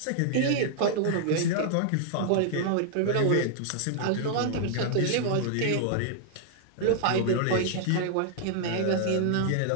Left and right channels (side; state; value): both; different; correlation -0.01